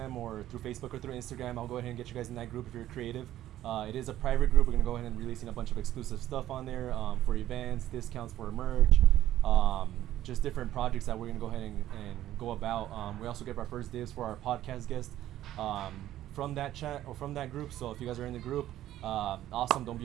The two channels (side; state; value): left; quieter; 13.2 dB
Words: or through Facebook or through Instagram. I'll go ahead and get you guys in that group if you're creative. It is a private group. We're going to go ahead and releasing a bunch of exclusive stuff on there for events, discounts for merch, just different projects that we're going to go ahead and go about. We also get our first dibs for our podcast guest from that chat or from that group. So if you guys are in the group, awesome. Don't be